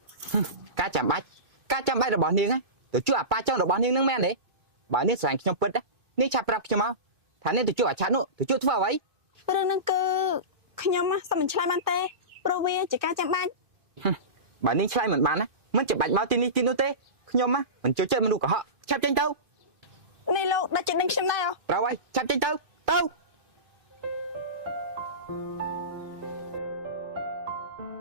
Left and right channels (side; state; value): left; late; 2.5 ms